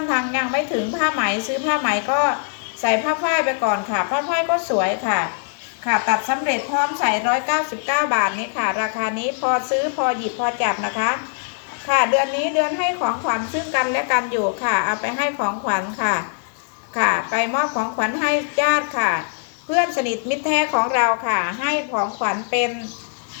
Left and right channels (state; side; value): silent; right; digital silence